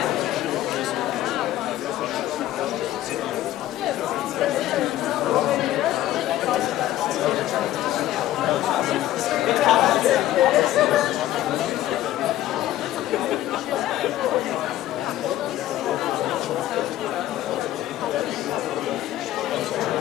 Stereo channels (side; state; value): right; quieter; 13.9 dB